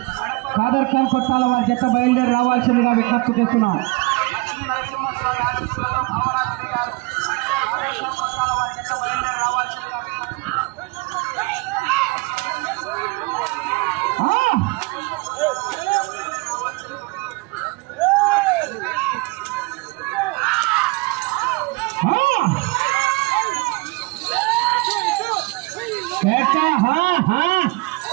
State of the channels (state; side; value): quieter; left; 25.8 dB